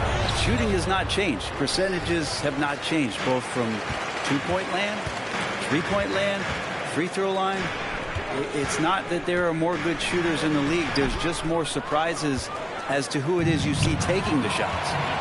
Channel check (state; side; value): identical; both; correlation 1.00